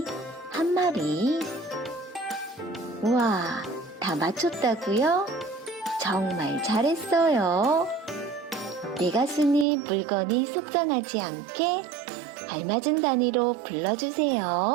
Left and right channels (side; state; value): left; drops out; at 9.7 s